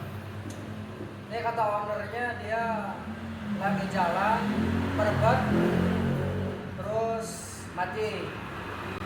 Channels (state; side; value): identical; both; correlation 1.00